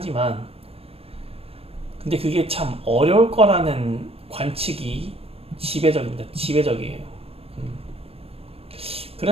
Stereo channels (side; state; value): left; late; 0.28 ms